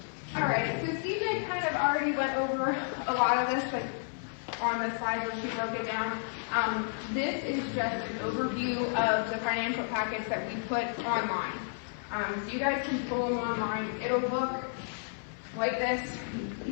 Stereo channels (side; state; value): right; silent; 56 dB below the other